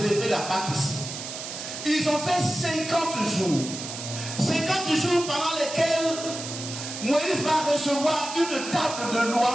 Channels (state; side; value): noise; right; hiss, 8 dB below the sound